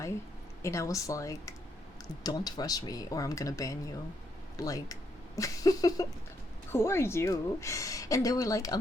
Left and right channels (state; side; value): normal; both; correlation 0.76